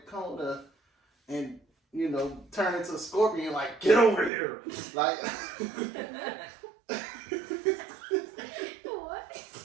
corner and turned into a scorpion, like, get over here, like. What?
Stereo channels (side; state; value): left; drops out; at 4.3 s